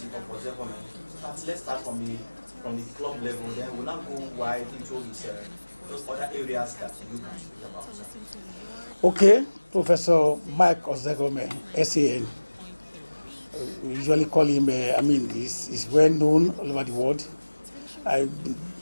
of Ozekhome? Let's start from the club level, then we'll now go wide into his those other areas that you can speak about. Okay, Professor Mike Ozekhome, SEN. We usually call him, he's well known all over the world. I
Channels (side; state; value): both; inverted; correlation -1.00